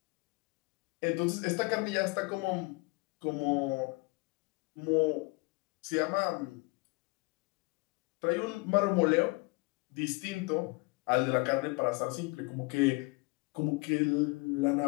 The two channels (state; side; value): quieter; right; 26.8 dB